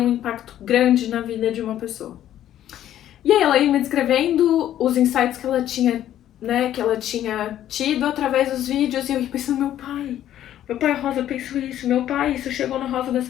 impacto grande na vida de uma pessoa. E aí ela ia me descrevendo os insights que ela tinha, né, que ela tinha tido através dos vídeos, e eu ia pensando, meu pai, Rosa pensou isso, meu pai, isso chegou na Rosa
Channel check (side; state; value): right; quieter; 11.8 dB